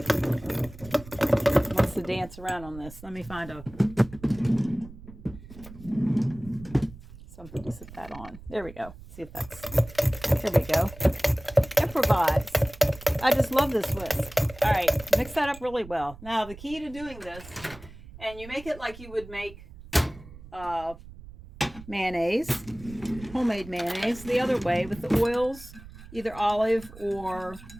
It wants to dance around on this. Let me find something to sit that on. There we go. See if that's... There we go. Improvise. I just love this whisk. All right. Mix that up really well. Now, the key to doing this... And you make it like you would make mayonnaise, homemade mayonnaise, the other way with the oils, either olive or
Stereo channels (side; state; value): right; noise; rumble, 17 dB below the sound